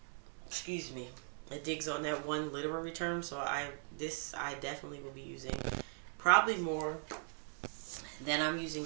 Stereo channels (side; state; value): left; silent; 51 dB below the other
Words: Excuse me. It digs on that one literary term, so I definitely will be using probably more than I'm using